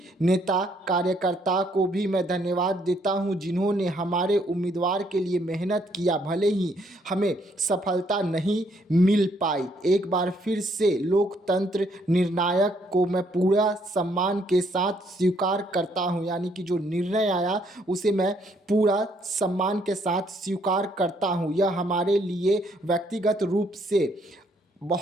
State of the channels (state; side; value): normal; both; correlation 0.69